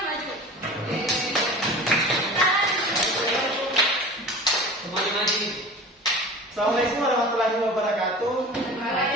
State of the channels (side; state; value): both; normal; correlation 0.38